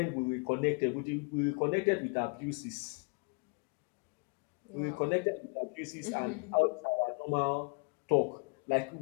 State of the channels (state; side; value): quieter; right; 33.9 dB